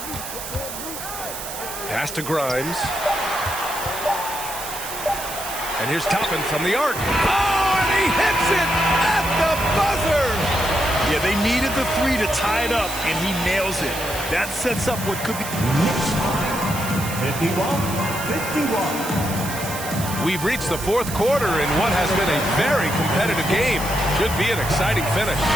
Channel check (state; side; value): noise; right; hiss, 9 dB below the sound